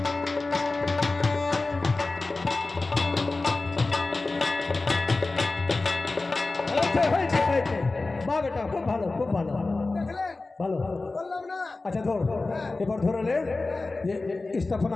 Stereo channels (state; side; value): quieter; right; 3.4 dB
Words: বাহ বেটা, খুব ভালো, খুব ভালো, দেখলেন? ভালো। বললাম না? আচ্ছা ধর, এবার ধরলে যে